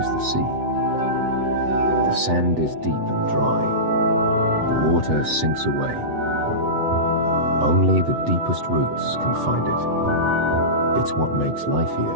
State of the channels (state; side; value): late; left; 8.0 ms